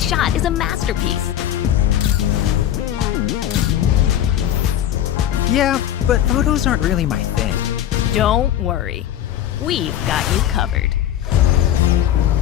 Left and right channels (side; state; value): right; quieter; 11.3 dB